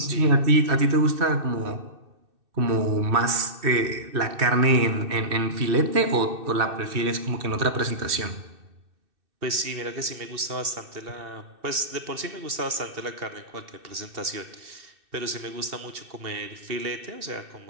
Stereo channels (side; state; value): left; late; 2.6 ms